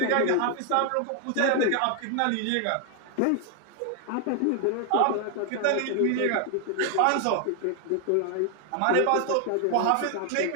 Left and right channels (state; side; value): different; both; correlation 0.00